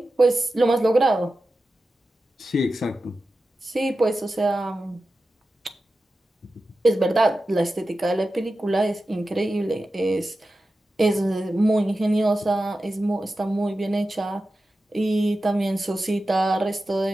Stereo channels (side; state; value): both; normal; correlation 0.93